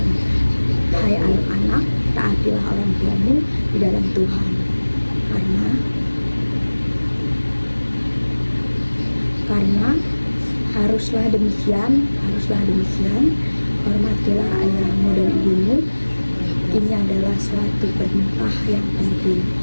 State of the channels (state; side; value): inverted; both; correlation -1.00